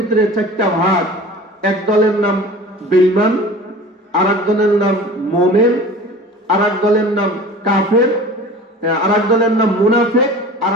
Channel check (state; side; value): normal; both; correlation 0.40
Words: চারটা ভাগ, এক দলের নাম বেঈমান, আর এক দলের নাম মুমিন, আর এক দলের নাম কাফের, আর এক দলের নাম মুনাফিক, আর